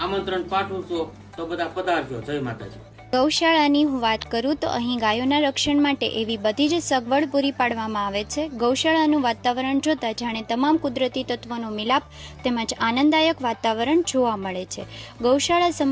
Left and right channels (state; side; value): identical; both; correlation 1.00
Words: આમંત્રણ પાઠવું છું. તો બધા પધારજો. જય માતાજી. ગૌશાળાની હું વાત કરું તો અહીં ગાયોના રક્ષણ માટે એવી બધી જ સગવડ પૂરી પાડવામાં આવે છે. ગૌશાળાનું વાતાવરણ જોતા જાણે તમામ કુદરતી તત્વોનો મિલાપ તેમજ આનંદદાયક વાતાવરણ જોવા મળે છે. ગૌશાળા